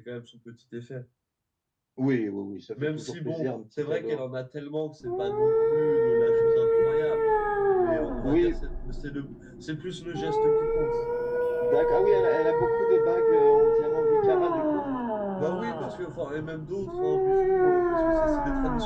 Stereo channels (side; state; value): both; identical; correlation 1.00